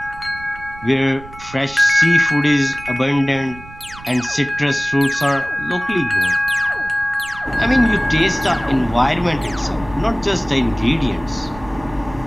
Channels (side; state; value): right; noise; rumble, 18 dB below the sound